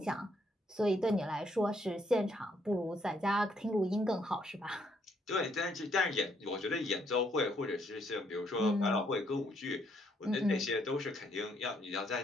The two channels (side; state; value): both; normal; correlation 0.71